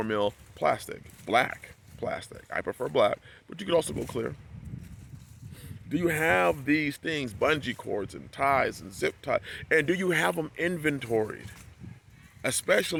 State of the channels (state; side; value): identical; both; correlation 1.00